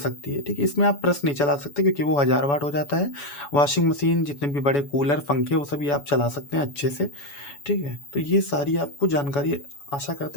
है, ठीक है? इसमें आप प्रेस नहीं चला सकते क्योंकि वो 1000 वाट हो जाता है। वॉशिंग मशीन, जितने भी बड़े कूलर, पंखे, वो सभी आप चला सकते हैं अच्छे से, ठीक है? तो ये सारी आपको जानकारी आशा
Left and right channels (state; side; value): late; right; 7.0 ms